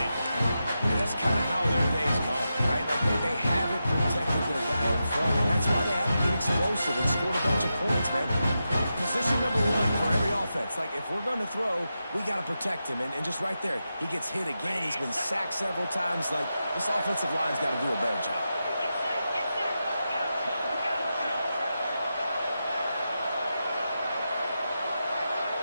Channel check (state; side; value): inverted; both; correlation -0.89